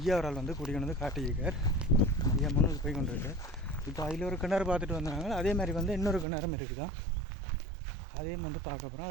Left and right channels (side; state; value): left; drops out; at 6.2 s